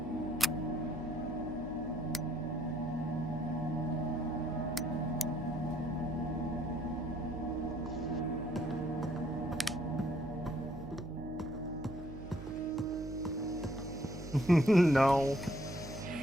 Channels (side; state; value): right; noise; hum, 11 dB below the sound